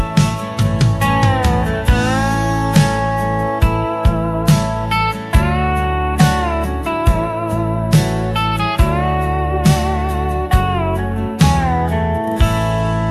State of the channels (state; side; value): identical; both; correlation 1.00